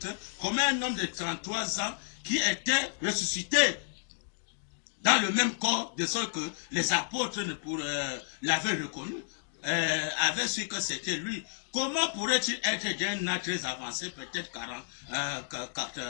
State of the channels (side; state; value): right; silent; digital silence